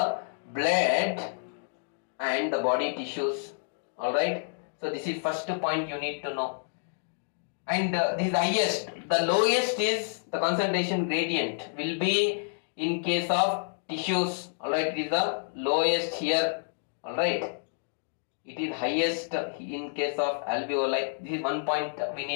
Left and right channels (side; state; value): right; silent; digital silence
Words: blood and the body tissues. Alright, so this is first point you need to know. And this is the highest. The lowest is the concentration gradient will be in case of tissues. Alright, it is the lowest here. Alright, it is highest in case of alveoli. This is one point we